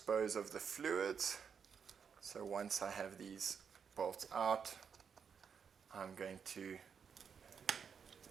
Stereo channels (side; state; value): left; quieter; 6.7 dB